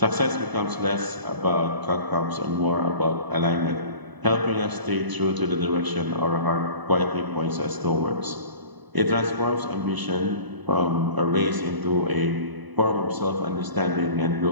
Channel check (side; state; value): left; late; 1.0 ms